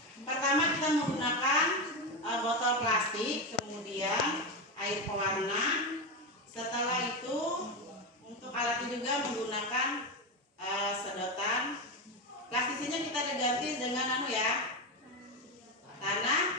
pertama kita menggunakan botol plastik, kemudian air pewarna. Setelah itu untuk alatnya juga menggunakan sedotan. Plastisnya kita ganti dengan tanah.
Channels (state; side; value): normal; both; correlation 0.14